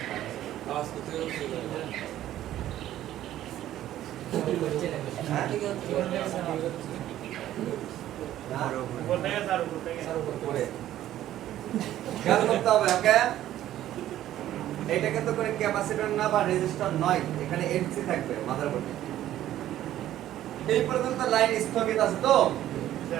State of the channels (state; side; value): quieter; left; 12.9 dB